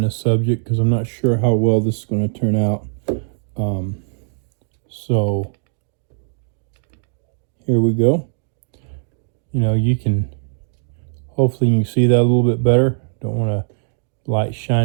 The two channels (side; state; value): left; silent; digital silence